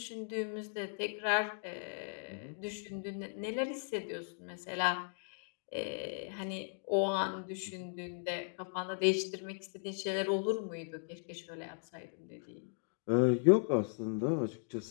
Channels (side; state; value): right; silent; digital silence